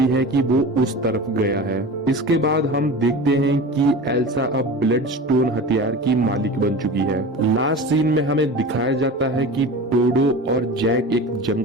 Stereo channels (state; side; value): normal; both; correlation 0.33